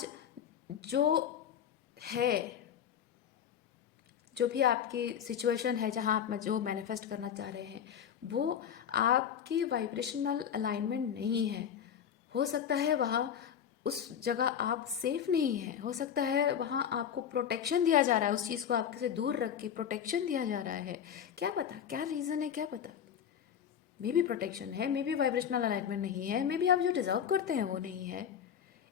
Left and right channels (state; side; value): quieter; right; 8.6 dB